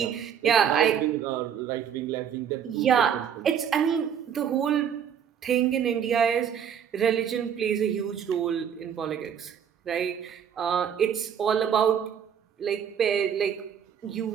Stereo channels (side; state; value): left; quieter; 8.3 dB